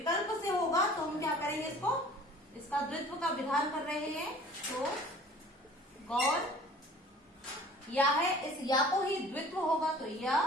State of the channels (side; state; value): both; normal; correlation 0.48